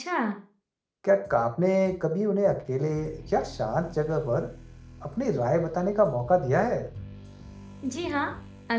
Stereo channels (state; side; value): identical; both; correlation 1.00